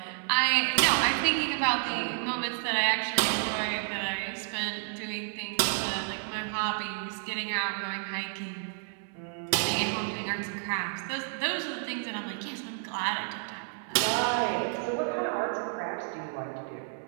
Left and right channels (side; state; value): left; silent; 58 dB below the other